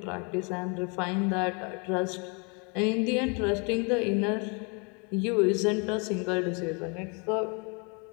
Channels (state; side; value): quieter; right; 33.9 dB